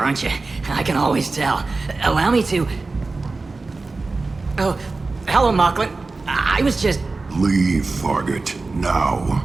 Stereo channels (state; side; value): quieter; left; 3.7 dB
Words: aren't you? I can always tell. Allow me to... Oh, hello, Mocklin. I was just... Leave, Fargate, now.